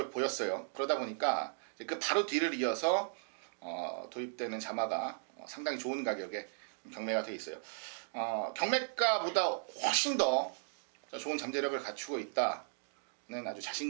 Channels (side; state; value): left; silent; digital silence